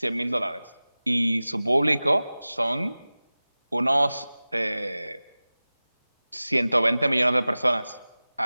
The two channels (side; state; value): both; inverted; correlation -0.98